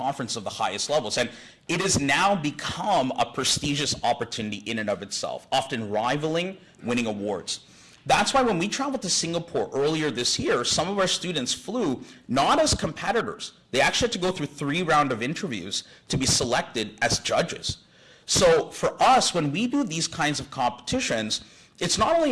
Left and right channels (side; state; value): both; identical; correlation 1.00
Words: of the highest levels. And it has now become a prestigious opportunity in and of itself, often rivaling winning awards. That's why when we traveled to Singapore earlier this year, some of our students flew not as competitors. They actually had to go through 3 rounds of interviews to be selected as judges. So for us, when we do these kinds of competitions, it's not only